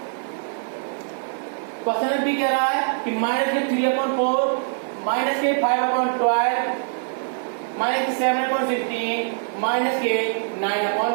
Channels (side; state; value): left; silent; digital silence